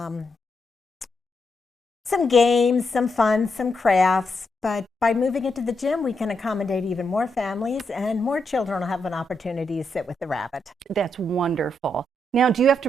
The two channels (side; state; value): both; normal; correlation 0.81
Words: Some games, some fun, some crafts, but by moving it to the gym, we can accommodate even more families, and more children will have an opportunity to sit with the rabbit. That's wonderful. Now, do you have